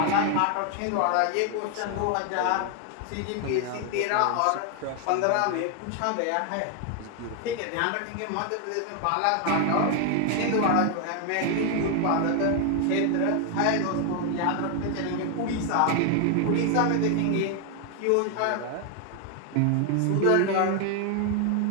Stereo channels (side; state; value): both; different; correlation 0.00